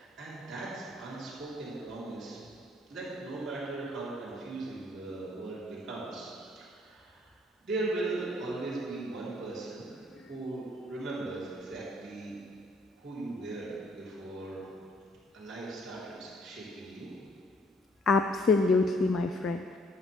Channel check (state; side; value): normal; both; correlation 0.63